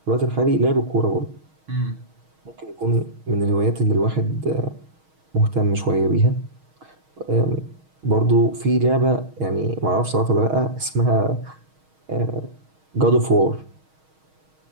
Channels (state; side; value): late; left; 6.4 ms